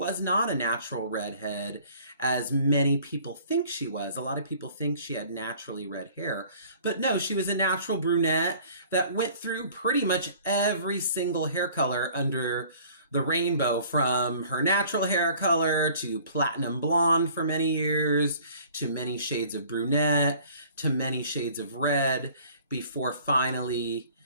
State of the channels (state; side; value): inverted; both; correlation -0.52